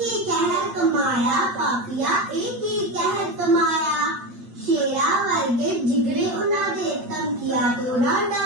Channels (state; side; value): late; left; 8.6 ms